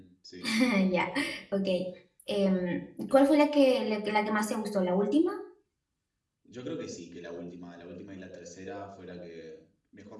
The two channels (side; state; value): both; identical; correlation 1.00